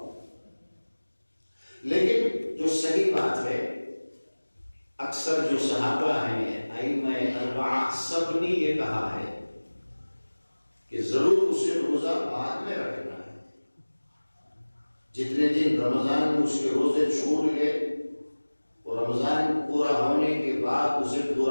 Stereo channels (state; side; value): inverted; both; correlation -1.00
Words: لیکن جو صحیح بات ہے، اکثر جو صحابہ ہیں ائمہ اربعہ سب نے یہ کہا ہے کہ ضرور اسے روزہ بعد میں رکھنا ہے، جتنے دن رمضان میں اس کے روزے چھوٹ گئے اور رمضان پورا ہونے کے بعد اسے